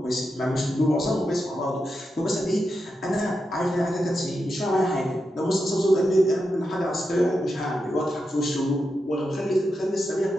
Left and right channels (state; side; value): normal; both; correlation 0.87